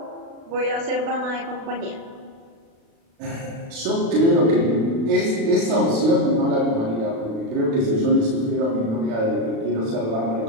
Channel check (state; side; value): late; left; 36 ms